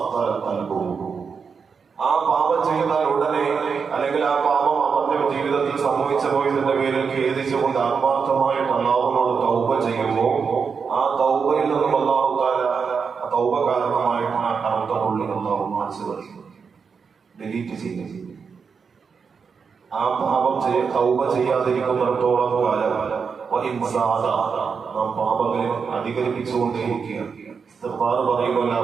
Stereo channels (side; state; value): left; quieter; 5.8 dB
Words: ഖൽബുഹു. ആ പാപം ചെയ്താൽ ഉടനെ, അല്ലെങ്കിൽ ആ പാപം അവന്റെ ജീവിതത്തിൽ സംഭവിച്ചു പോയതിന്റെ പേരിൽ ഖേദിച്ചുകൊണ്ട് ആത്മാർത്ഥമായിട്ട് അല്ലാഹുവിനോട് തൗബ ചെയ്യുമ്പോൾ ആ തൗബയിൽ നിന്നും അല്ലാഹു തആല ആ തൗബ കാരണമായിട്ട് ആ കറുത്ത പുള്ളി അല്ലാഹു മായ്ച്ചു കളയും, ഡിലീറ്റ് ചെയ്യും. ആ പാപം തൗബ ചെയ്യാതിരിക്കുന്നിടത്തോളം കാലം നാം പാപങ്ങളിൽ അധികരിപ്പിച്ചുകൊണ്ടേയിരിക്കുകയാണ്. ഇസ്തിഗ്ഫാർ പറയുന്നില്ല,